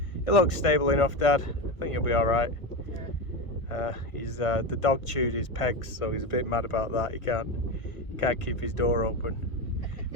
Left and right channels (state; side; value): late; right; 1.5 ms